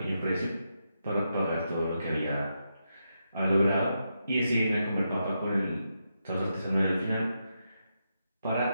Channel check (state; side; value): inverted; both; correlation -0.84